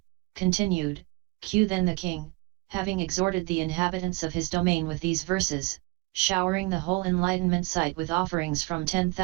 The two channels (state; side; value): quieter; left; 25.1 dB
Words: continued. Q. Then the king, having exhorted the inhabitants of his domain with these verses, showering the whole enlightenment site with offerings from